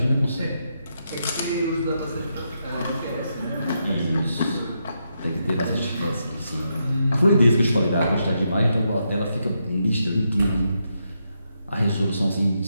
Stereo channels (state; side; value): inverted; both; correlation -0.82